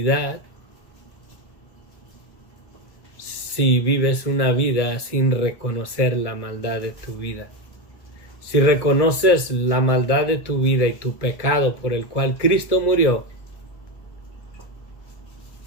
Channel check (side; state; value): right; late; 1.2 ms